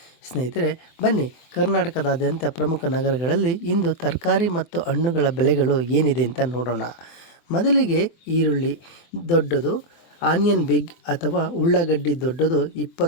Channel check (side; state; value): right; late; 24 ms